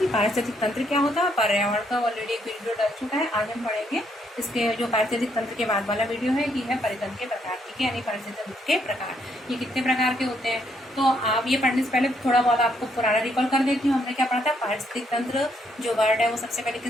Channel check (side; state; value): both; normal; correlation 0.73